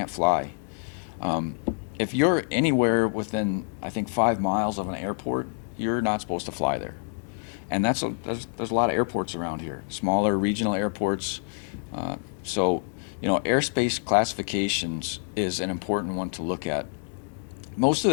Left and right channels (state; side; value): silent; right; digital silence